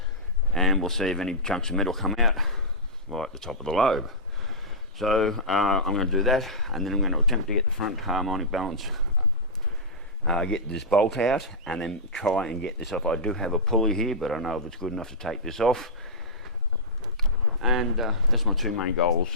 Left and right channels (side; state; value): both; normal; correlation -0.13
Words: and we'll see if any chunks of metal come out right at the top of the lobe. So I'm going to do that, and then I'm going to attempt to get the front harmonic balance, get this bolt out, and then try and get this off. I do have a pulley here, but I don't know if it's good enough to take this off. And that's my two main goals